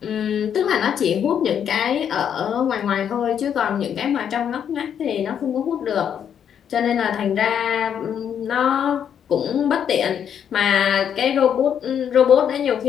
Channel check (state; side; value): quieter; right; 8.6 dB